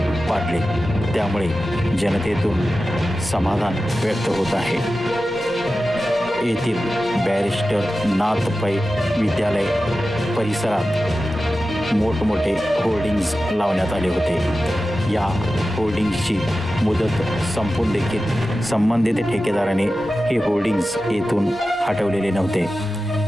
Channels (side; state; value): both; normal; correlation 0.94